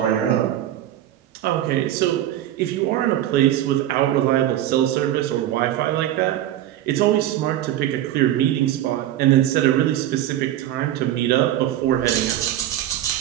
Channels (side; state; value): left; quieter; 12.7 dB